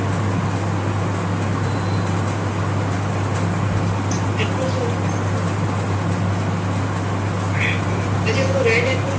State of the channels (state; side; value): identical; both; correlation 1.00